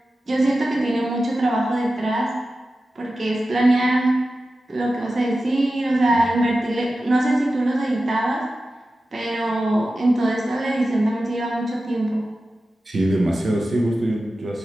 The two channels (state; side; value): normal; both; correlation 0.93